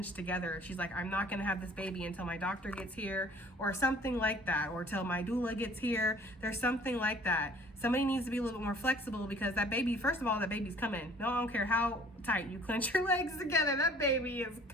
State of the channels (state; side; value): normal; both; correlation 0.52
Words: together. She's like, I'm not going to have this baby until my doctor gets here, or something like that, or till my doula gets here. There's something like that. Somebody needs to be a little bit more flexible, because that baby, first of all, that baby's coming. No, I don't care how tight you clench your legs together. That baby is